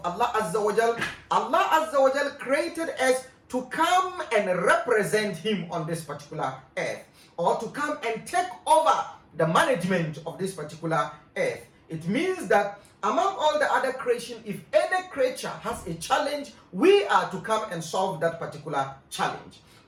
Allah Azza wa Jal. Allah Azza wa Jal created us to come and represent him on this particular earth, or to come and take over the management of this particular earth. It means that among all the other creation, if any creature has a challenge, we are to come and solve that particular challenge.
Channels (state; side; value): identical; both; correlation 1.00